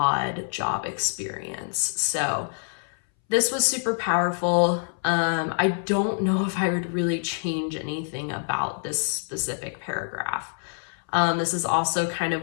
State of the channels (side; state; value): right; silent; 61 dB below the other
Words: job experience. So this was super powerful. I don't know if I would really change anything about this specific paragraph. This is also kind